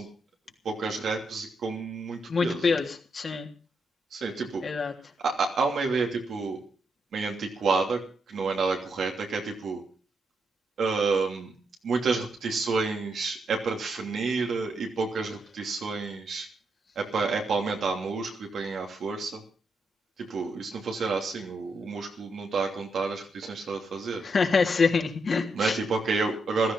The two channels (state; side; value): normal; both; correlation 0.80